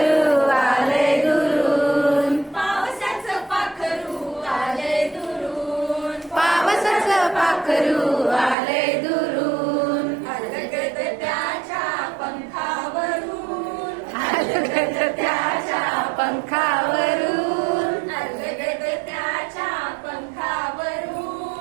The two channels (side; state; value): left; drops out; at 8.6 s